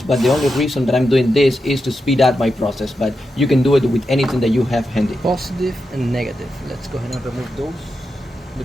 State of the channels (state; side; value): normal; both; correlation 0.88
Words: but the only reason that I'm doing this is to speed up my process, but you can do it with anything that you have handy. Positive and negative. Let's go ahead and remove those. The